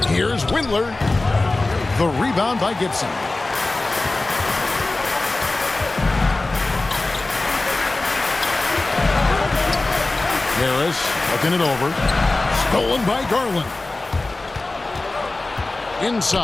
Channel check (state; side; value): quieter; right; 3.1 dB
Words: Here's Windler. The rebound by Gibson. Harris looking it over. Stolen by Garland.